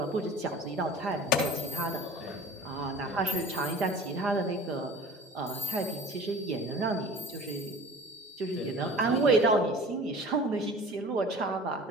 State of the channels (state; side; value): normal; both; correlation 0.42